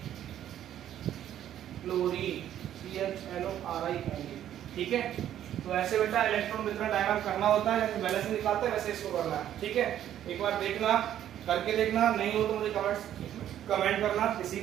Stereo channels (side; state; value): left; quieter; 11.2 dB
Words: क्लोरीन CHLORIN, ठीक है। तो ऐसे बेटा इलेक्ट्रॉन वितरण डायग्राम करना होता है, जैसे बैलेंस निकालते हैं वैसे इसको करना है, ठीक है। एक बार देखना, करके देखना, नहीं हो तो मुझे कमेंट करना। इसी